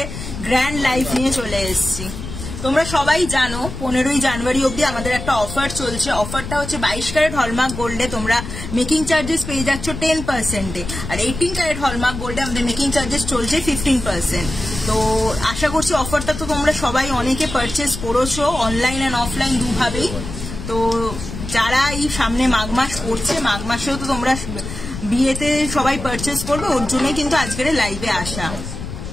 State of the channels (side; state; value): left; noise; rumble, 8 dB below the sound